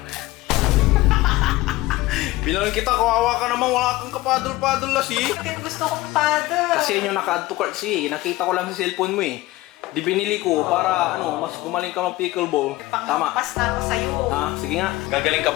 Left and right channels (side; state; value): right; quieter; 18.7 dB